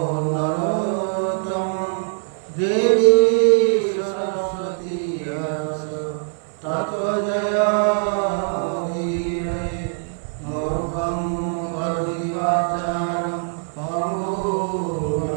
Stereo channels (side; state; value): left; silent; 61 dB below the other